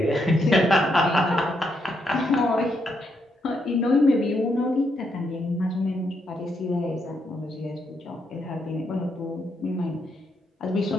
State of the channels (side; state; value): both; normal; correlation 0.78